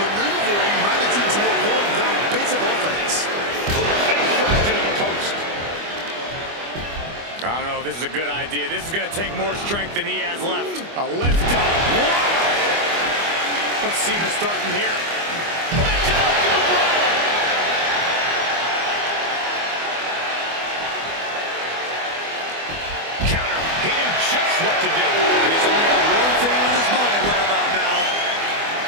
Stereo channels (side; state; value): left; late; 25 ms